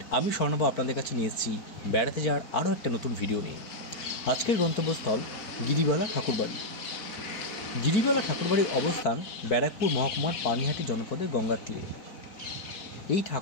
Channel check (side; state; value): right; late; 4.5 ms